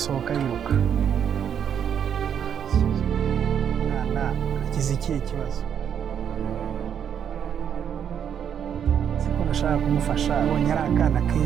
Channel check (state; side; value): quieter; left; 8.4 dB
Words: yiruka? Mwana agize ikihe kibazo? Siko nashaka kumufasha, abonye ari akana